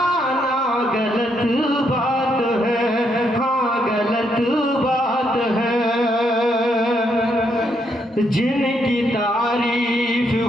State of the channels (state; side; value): normal; both; correlation 0.76